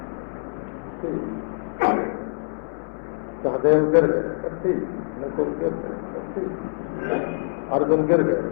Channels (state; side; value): silent; right; 62 dB below the other